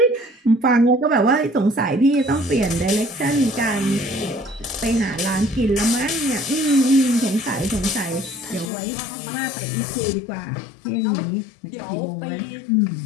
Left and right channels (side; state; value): right; drops out; at 8.7 s